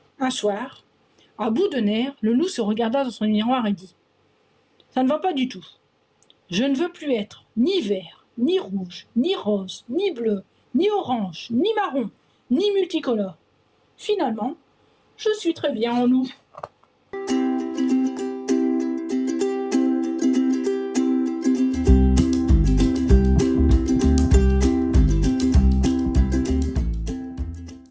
Un soir, à bout de nerfs, le loup se regarda dans son miroir et dit : « Ça ne va pas du tout. Je ne veux plus être ni vert, ni rouge, ni rose, ni bleu, ni orange, ni marron, ni multicolore. Finalement, je suis très bien en loup. »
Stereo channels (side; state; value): both; identical; correlation 1.00